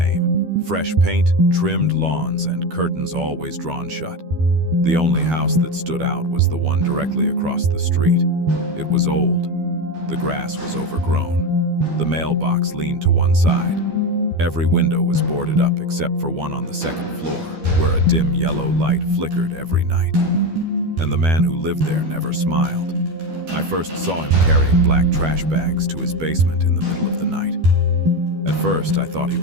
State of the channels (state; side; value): late; left; 12 ms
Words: Fresh paint, trimmed lawns, and curtains always drawn shut. The only house that stood out was the one directly across the street. It was old. The grass was overgrown. The mailbox leaned to one side. Every window was boarded up except for one on the second floor, where a dim yellow light flickered every night. And the man who lived there never smiled. I first saw him carrying black trash bags to his basement in the middle of the night. At first, I thought he